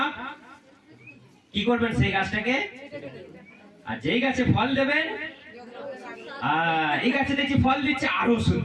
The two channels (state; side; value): identical; both; correlation 1.00